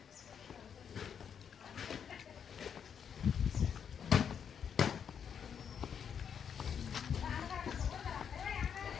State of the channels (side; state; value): right; quieter; 7.7 dB